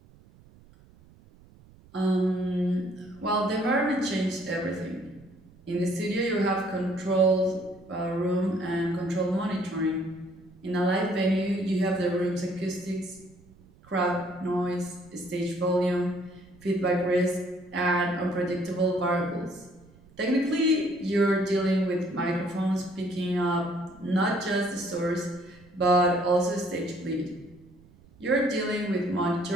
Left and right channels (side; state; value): right; noise; rumble, 26 dB below the sound